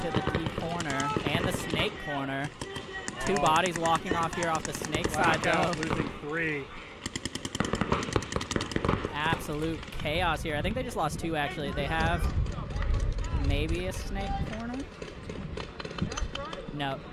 the D corner and the snake corner. 2 bodies walking off here off the snake side, though. Losing 3. Absolute chaos here. I think they just lost 2, actually. They have maybe a snake corner? No.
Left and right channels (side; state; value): both; identical; correlation 1.00